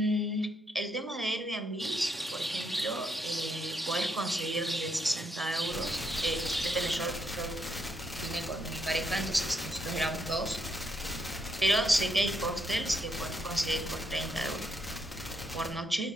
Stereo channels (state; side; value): normal; both; correlation 0.76